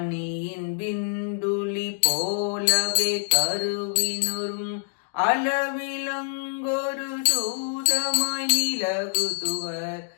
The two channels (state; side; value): silent; right; digital silence